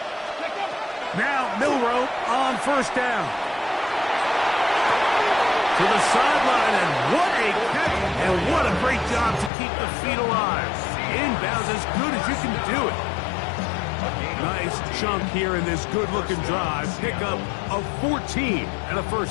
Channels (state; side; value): drops out; right; at 9.5 s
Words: Now Milrow on first down. To the sideline, and what a catch, and what a great job to keep the feet alive. Inbounds as good as you can do it. Nice chunk here in this good-looking drive. Pick up of 14 and a